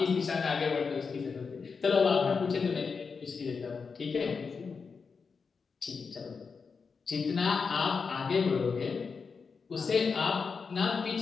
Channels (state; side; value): quieter; right; 5.3 dB